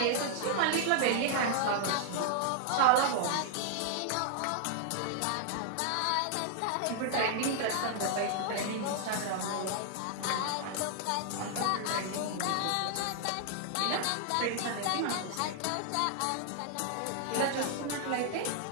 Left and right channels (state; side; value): different; both; correlation 0.00